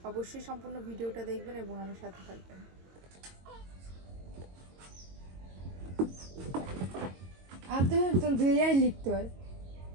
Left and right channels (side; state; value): left; late; 22 ms